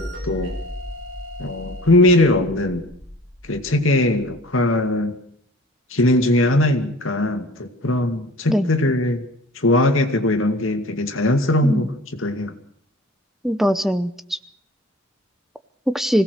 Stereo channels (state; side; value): normal; both; correlation 0.46